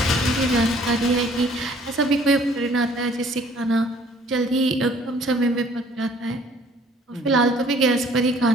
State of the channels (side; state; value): both; normal; correlation 0.57